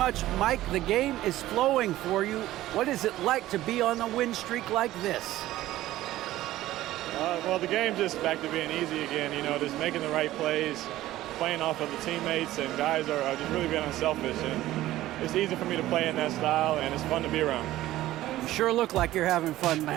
Mike. The game is flowing for you. What is it like to be on a win streak like this? Well, the game's just back to being easy again, you know, just making the right plays, playing off of the teammates, and guys are just really being unselfish. And it's easy for me to play in that style, and it's fun to be around. You sure look like you're having fun,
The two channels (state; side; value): quieter; left; 15.2 dB